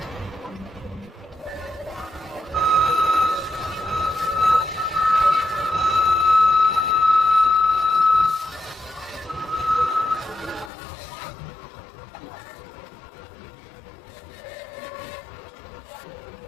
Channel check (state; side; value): drops out; right; at 10.7 s